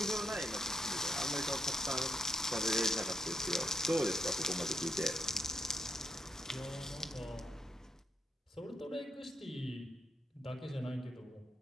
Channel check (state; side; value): normal; both; correlation 0.76